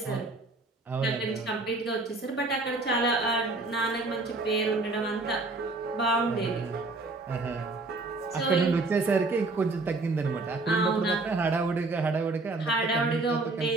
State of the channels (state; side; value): quieter; left; 3.3 dB